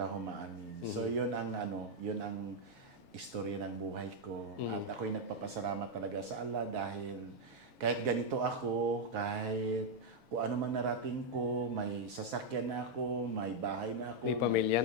amin. So yun ang istorya ng buhay ko. At ako'y nagpapasalamat talaga sa Allah dahil kahit ganito ako, kahit kung ano man narating ko, may sasakyan na ako, may bahay na ako. May pamilya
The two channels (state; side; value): normal; both; correlation 0.00